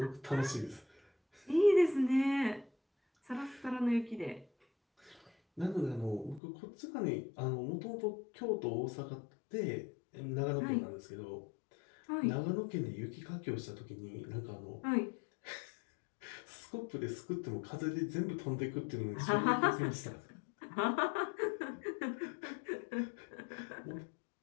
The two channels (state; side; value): drops out; right; at 6.4 s